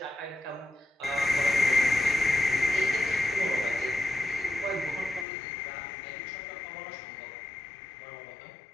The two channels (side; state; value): right; drops out; at 5.2 s